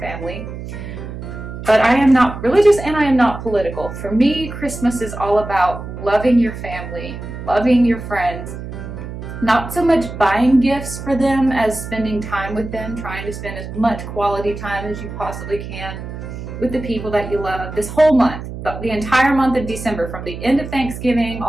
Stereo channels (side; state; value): right; noise; hum, 9 dB below the sound